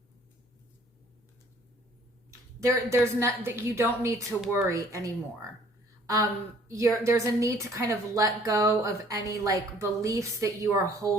There's not that you don't need to worry anymore. There's a need to kind of let go of any like beliefs that you are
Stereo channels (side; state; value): both; normal; correlation 0.57